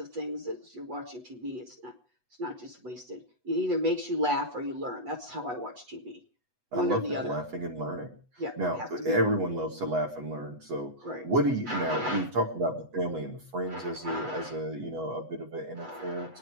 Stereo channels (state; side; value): late; left; 8.0 ms